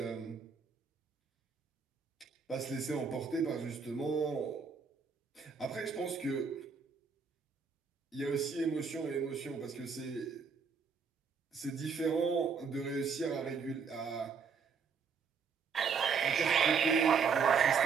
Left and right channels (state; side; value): quieter; left; 5.7 dB